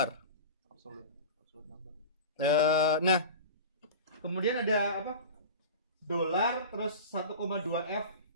Nah, kemudian ada apa? Dolar terus 1,2f.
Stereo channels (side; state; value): both; inverted; correlation -0.32